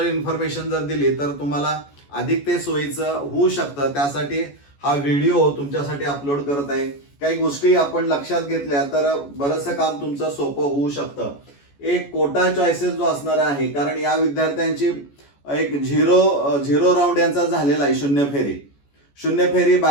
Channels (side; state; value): right; late; 14 ms